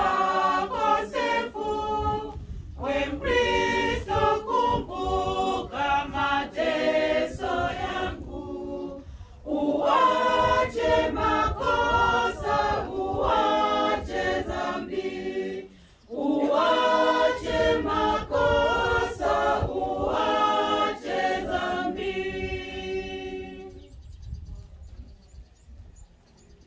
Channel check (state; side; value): identical; both; correlation 1.00